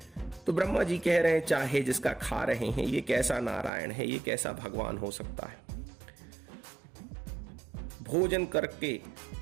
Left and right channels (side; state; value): left; drops out; at 3.7 s